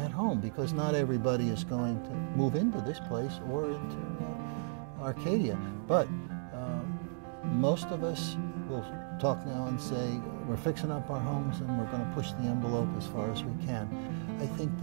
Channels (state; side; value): silent; left; digital silence